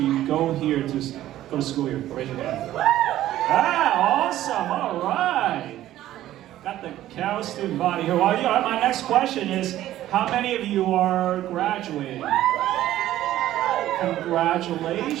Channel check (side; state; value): left; quieter; 13.7 dB